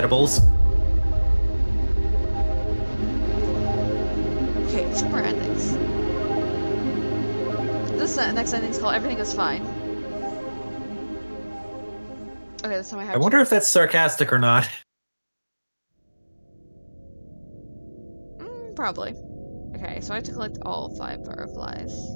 Okay, 2 more endings. This next ending's called Everything Is Fine. Okay, this time I have I wonder if that's sarcastic or not. Probably. Okay, so I have to collect all 5 butterflies.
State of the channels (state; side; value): inverted; both; correlation -1.00